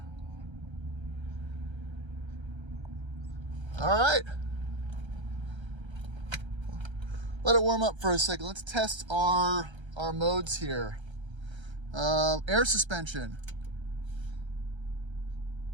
All right. Let it warm up for a second. Let's test our modes here. Air suspension.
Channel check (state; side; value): late; left; 1.3 ms